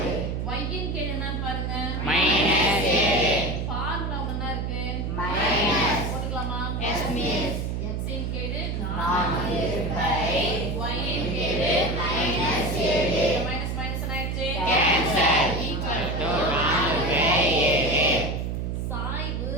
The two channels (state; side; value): noise; right; hum, 2 dB below the sound